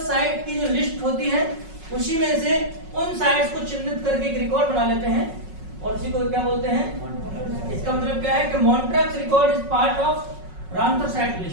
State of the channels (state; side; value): late; left; 5.4 ms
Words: साइट की जो लिस्ट होती है उसी में से उन साइट्स को चिन्हित करके एक रिकॉर्ड बना लेते हैं, और उसी को क्या बोलते हैं? इसका मतलब क्या है कि Montreux record is part of Ramsar site